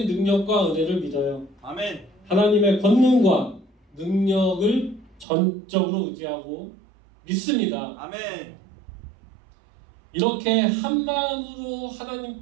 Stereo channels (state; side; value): drops out; left; at 5.2 s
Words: 능력과 은혜를 믿어요. 아멘. 하나님의 권능과 능력을 전적으로 의지하고 믿습니다. 아멘. 이렇게 한 마음으로